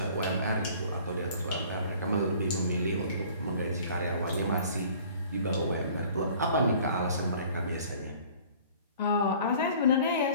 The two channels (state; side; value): inverted; both; correlation -0.51